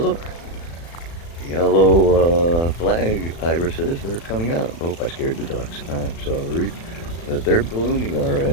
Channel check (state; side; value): late; right; 36 ms